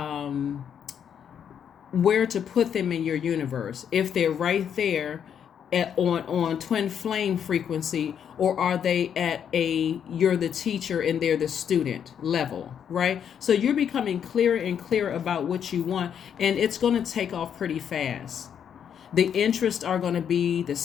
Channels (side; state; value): right; quieter; 8.4 dB